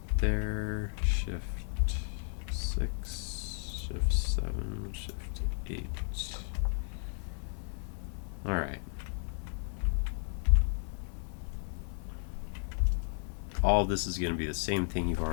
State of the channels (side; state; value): right; silent; 55 dB below the other